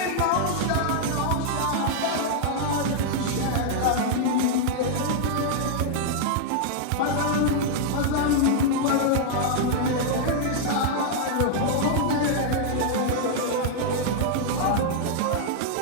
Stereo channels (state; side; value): different; both; correlation -0.01